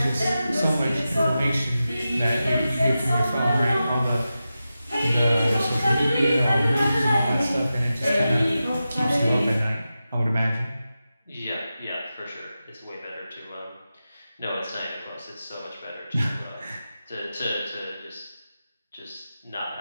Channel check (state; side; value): inverted; both; correlation -0.92